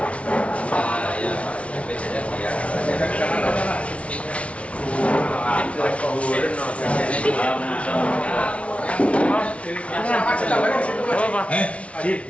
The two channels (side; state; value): right; late; 0.063 ms